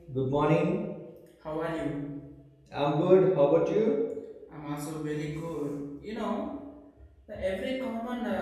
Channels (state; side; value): identical; both; correlation 1.00